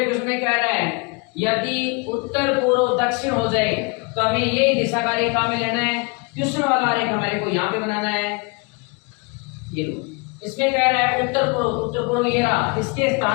क्वेश्चन में कह रहा है यदि उत्तर पूर्व दक्षिण हो जाए तो हमें ये दिशा का रेखा में लेना है। क्वेश्चन वाला रेखा हमारे को यहाँ पे बनाना है। ये लो, इसमें कह रहा है उत्तर पूर्व ये रहा, इसके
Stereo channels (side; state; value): right; quieter; 30.5 dB